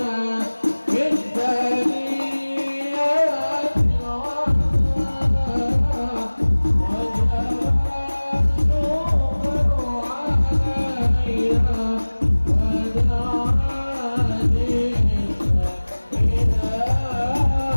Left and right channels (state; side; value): inverted; both; correlation -1.00